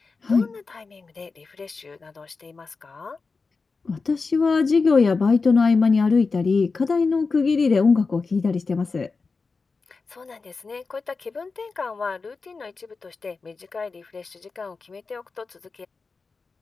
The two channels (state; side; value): quieter; right; 4.4 dB